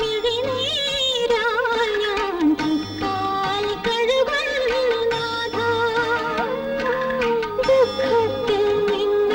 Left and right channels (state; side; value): identical; both; correlation 1.00